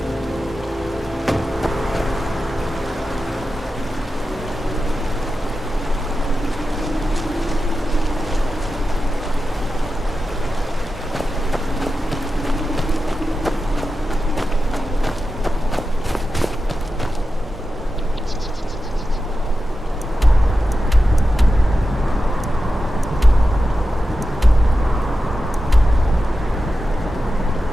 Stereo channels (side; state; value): both; normal; correlation 0.92